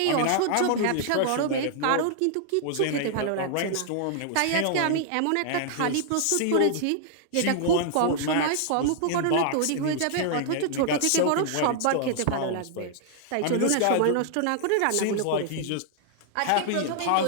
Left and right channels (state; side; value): different; both; correlation -0.01